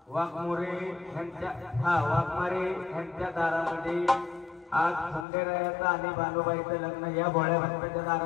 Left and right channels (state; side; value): drops out; right; at 5.2 s